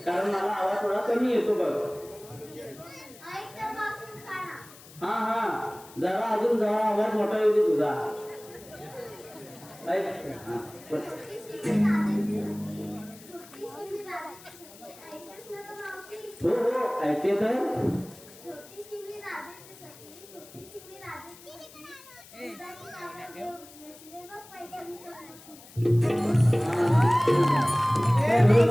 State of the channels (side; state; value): left; noise; hiss, 20 dB below the sound